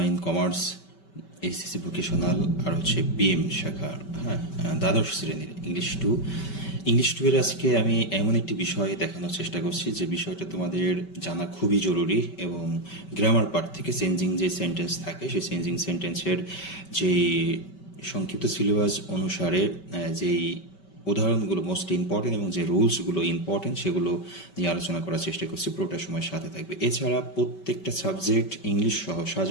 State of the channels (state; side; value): late; right; 5.2 ms